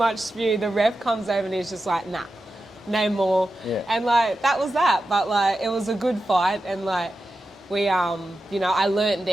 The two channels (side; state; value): both; normal; correlation 0.91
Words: spew. The ref comes over and he's just like, nah, no more. Yeah. And like that was that, but like it was a good fight, and like we you know, I learnt